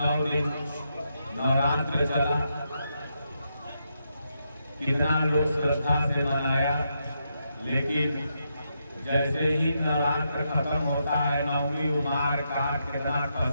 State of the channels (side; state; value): both; inverted; correlation -0.82